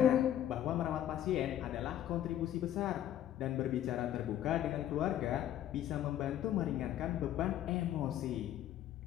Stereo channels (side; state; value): right; quieter; 11.6 dB